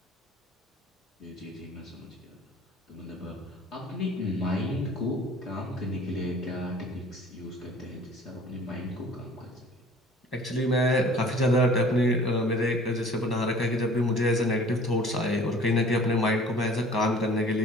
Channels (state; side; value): normal; both; correlation 0.49